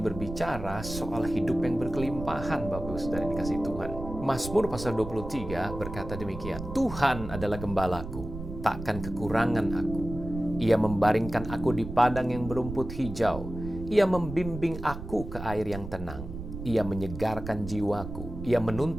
soal hidup yang berkelimpahan, Bapak Saudara yang dikasihi Tuhan. Mazmur pasal 23 berkata demikian. Tuhan adalah gembalaku, takkan kekurangan aku. Ia membaringkan aku di padang yang berumput hijau. Ia membimbing aku ke air yang tenang. Ia menyegarkan jiwaku. Ia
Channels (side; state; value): right; noise; rumble, 9 dB below the sound